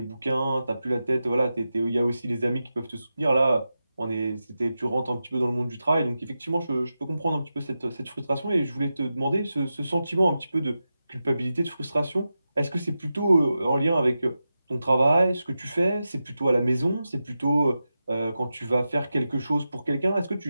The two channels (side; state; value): both; inverted; correlation -0.91